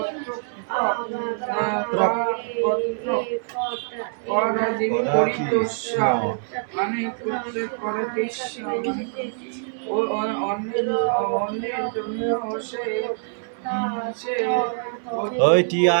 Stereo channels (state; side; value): silent; left; 62 dB below the other